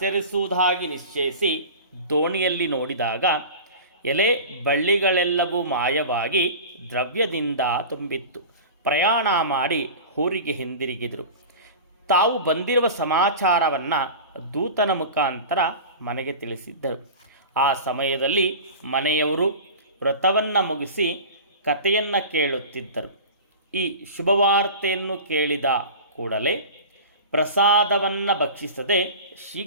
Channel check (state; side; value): inverted; both; correlation -0.34